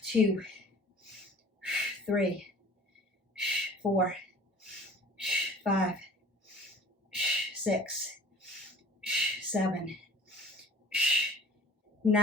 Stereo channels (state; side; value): normal; both; correlation 0.46